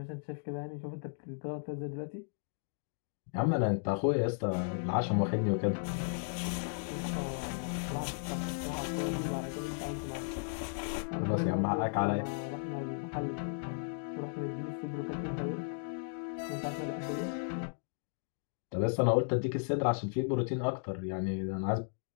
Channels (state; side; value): silent; right; digital silence